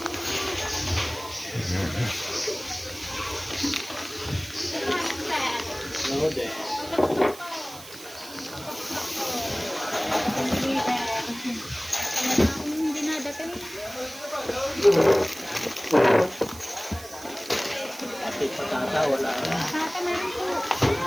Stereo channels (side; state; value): right; noise; hiss, 16 dB below the sound